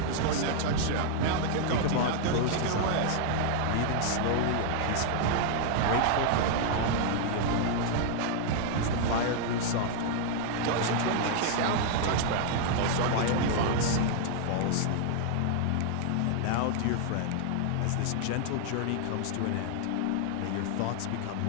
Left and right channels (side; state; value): both; different; correlation 0.00